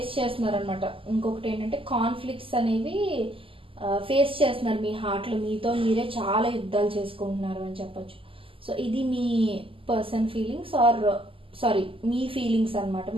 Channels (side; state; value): left; late; 0.26 ms